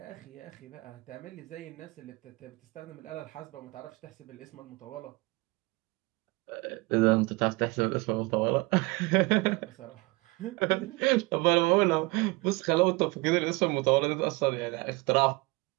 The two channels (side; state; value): left; quieter; 24.6 dB